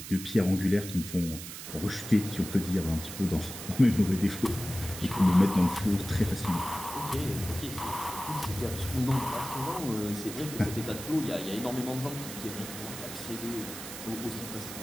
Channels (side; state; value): right; noise; hiss, 10 dB below the sound